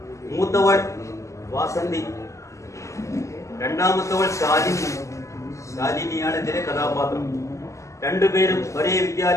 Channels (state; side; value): late; right; 0.15 ms